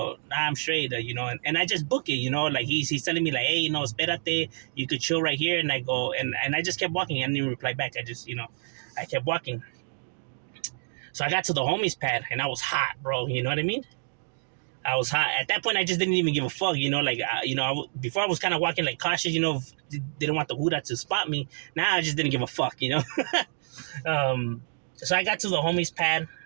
nah, I'm straight, and I just book it, like he's telling me like, hey, espérate, you could chill right here. And I go, and I just kept walking. I didn't even reply back. I just, I kept walking. So I got to the homies pad and I was hot, bro. You know what I mean? I was hot. At that point, I just didn't even give a fuck, before I was kind of walking like cautious, didn't want the Huda to spot me. Now I just didn't give a fuck, So I got to the homies pad,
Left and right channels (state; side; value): silent; left; digital silence